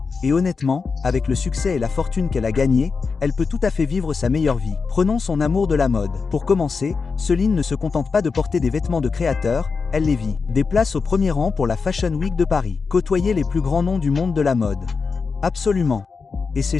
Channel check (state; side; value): quieter; right; 4.9 dB